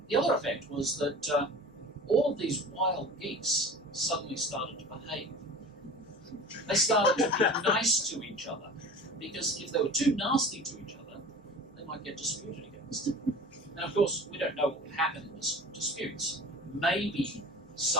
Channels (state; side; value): normal; both; correlation 0.37